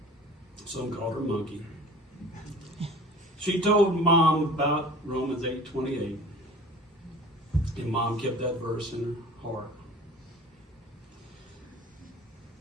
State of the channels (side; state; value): both; normal; correlation 0.43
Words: Some called her Monkey. She told Mom about Romans 8:28, and Mom kept that verse in her heart.